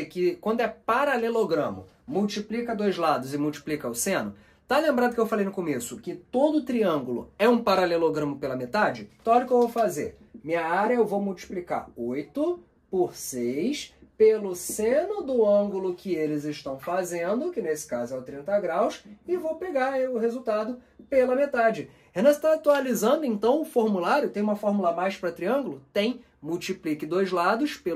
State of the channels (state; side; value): identical; both; correlation 1.00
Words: que quando é paralelogramo, multiplica dois lados e multiplica o seno? Tá lembrado que eu falei no começo que todo triângulo é um paralelogramo pela metade? Então olha o que eu vou fazer. Minha área eu vou multiplicar 8 por 6 pelo seno do ângulo que eles estão fazendo, que nesse caso é o 30 graus, e vou pegar o resultado pela metade. Renan, você está atualizando então o formulário? Tem uma fórmula a mais para triângulo? Tem. Multiplique dois lados